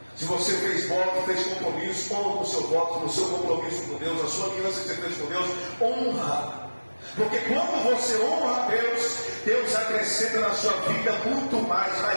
Se você fez voto, fez compromisso, honra o seu voto, o seu compromisso com Deus, a sua aliança que você fez com Deus, honra. Porque quando você honra a Deus, Deus acrescenta na sua vida muito mais,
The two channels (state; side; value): inverted; both; correlation -1.00